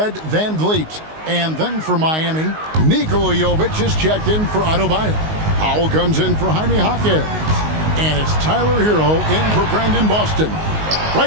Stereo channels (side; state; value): left; late; 19 ms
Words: Van Vliet. And then for Miami, Nikola Jovic is checked in for Adebayo. Powell comes in for Jaime Jaquez. And it's Tyler Hero in for Brandon Boston.